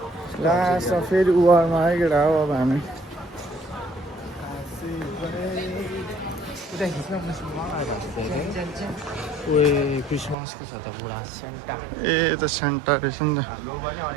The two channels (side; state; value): left; drops out; at 10.4 s